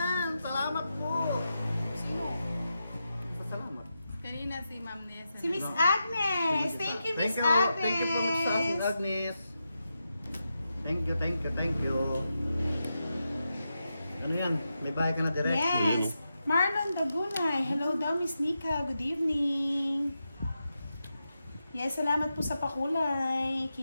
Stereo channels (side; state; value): both; inverted; correlation -0.88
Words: Salamat po! Sino? Salamat. Kanina si Ma'am Nessa. Si Miss Agnes. Thank you, Miss Agnes. Thank you po, Miss Agnes. Thank you. Ano yan? May bahay ka na direct? Yes. Marlon Dagunay. Hello daw, Miss Nika. Good evening. Yes, salamat po sa pakulay